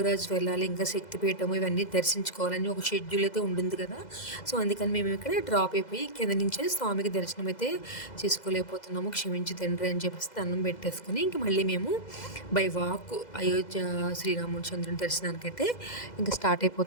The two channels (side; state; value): right; late; 2.0 ms